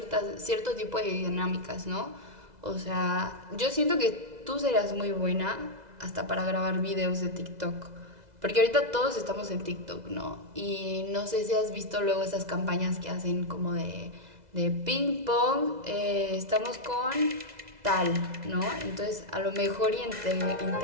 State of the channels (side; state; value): left; late; 2.0 ms